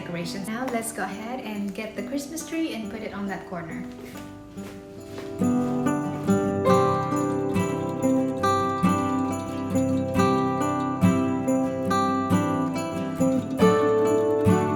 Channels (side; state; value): both; identical; correlation 1.00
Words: Now let's go ahead and get the Christmas tree and put it on that corner.